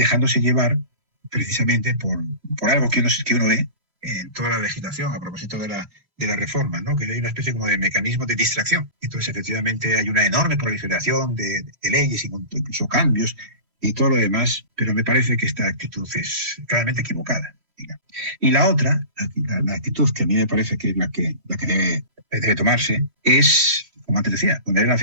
llevar precisamente por algo que uno ve en toda la legislación a propósito de la reforma, ¿no? Que hay una especie como de mecanismo de distracción. Entonces, efectivamente, hay una enorme proliferación de leyes, incluso cambios y todo lo demás, pero me parece que esta actitud es claramente equivocada. Digamos. Y la otra, la actitud que a mí me parece que es la que debe tomarse, es, como antes decía, poner el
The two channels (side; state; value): left; late; 3.1 ms